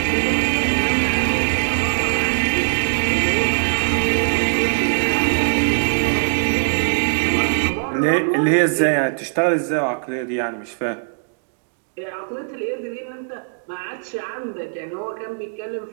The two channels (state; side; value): silent; left; digital silence